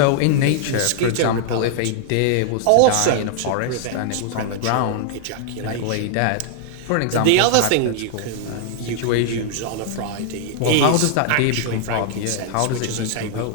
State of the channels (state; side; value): different; both; correlation -0.01